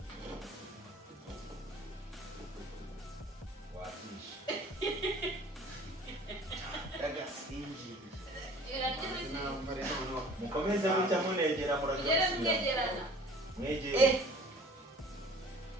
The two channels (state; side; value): normal; both; correlation 0.48